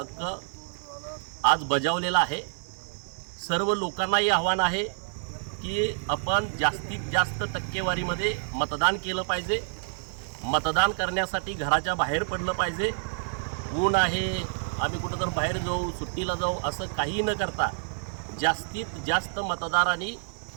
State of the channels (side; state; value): left; silent; 59 dB below the other